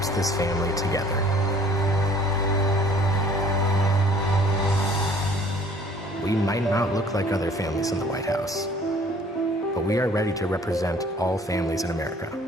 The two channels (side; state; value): both; normal; correlation 0.52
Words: this family together. We might not look like other families in the White House, but we are ready to represent all families in America.